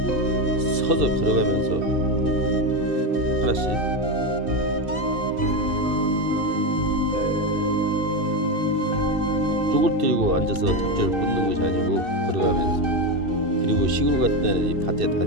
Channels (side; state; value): left; late; 2.6 ms